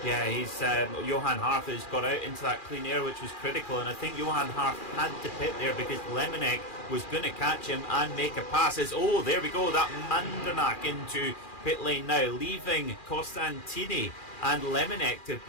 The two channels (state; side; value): late; right; 2.4 ms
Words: Yeah, he's Johan Harth has got out into that clean air, which was critical, and I think Johan Harth had to pit there because Lemonek was going to catch him and make a pass. Oh, there we go, that Mandenack into pit lane now, leaving Costantini and Lemonek to